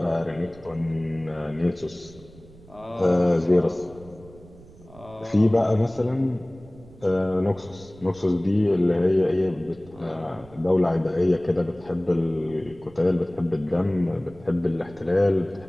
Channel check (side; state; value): right; noise; rumble, 22 dB below the sound